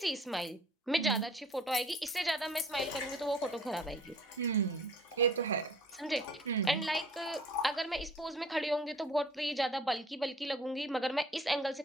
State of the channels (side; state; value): both; normal; correlation 0.52